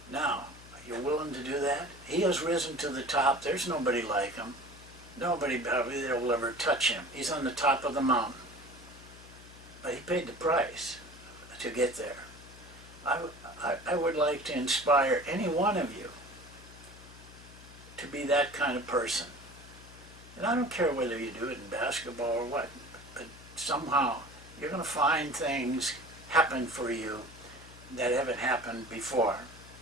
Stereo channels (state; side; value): noise; left; hum, 19 dB below the sound